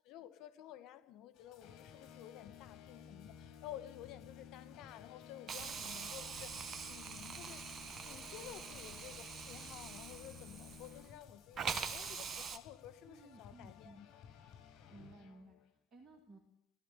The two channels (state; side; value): normal; both; correlation 0.53